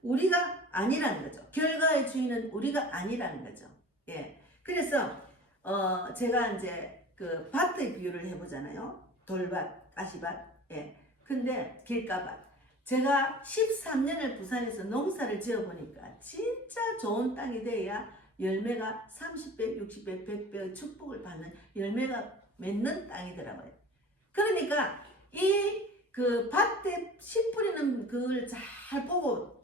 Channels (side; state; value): both; normal; correlation 0.40